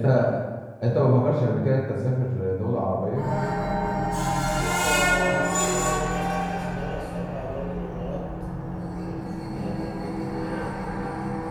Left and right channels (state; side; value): identical; both; correlation 1.00